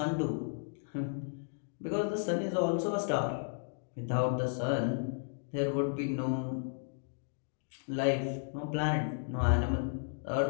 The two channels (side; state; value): right; silent; digital silence